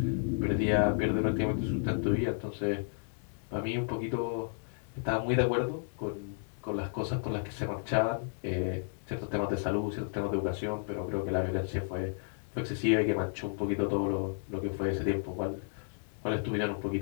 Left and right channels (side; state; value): right; silent; digital silence